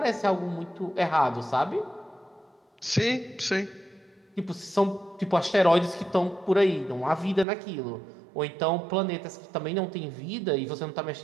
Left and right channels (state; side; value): drops out; left; at 7.5 s